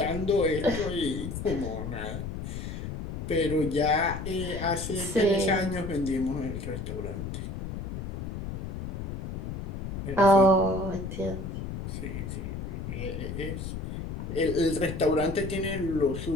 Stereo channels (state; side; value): noise; left; rumble, 6 dB below the sound